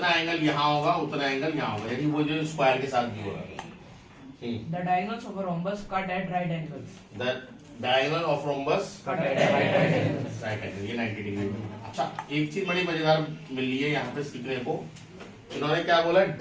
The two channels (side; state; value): both; identical; correlation 1.00